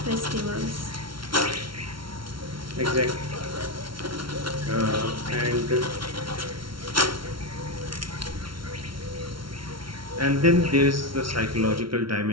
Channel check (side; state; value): left; late; 0.74 ms